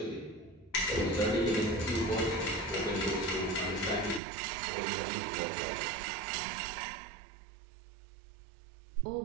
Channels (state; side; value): drops out; left; at 4.2 s